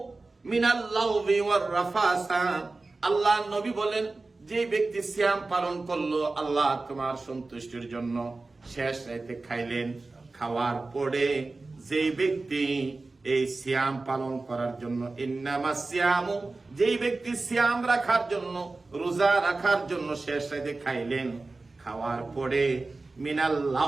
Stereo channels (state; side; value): quieter; left; 3.5 dB